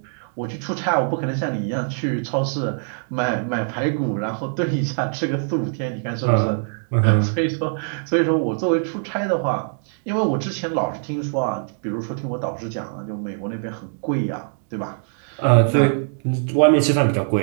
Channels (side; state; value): left; silent; digital silence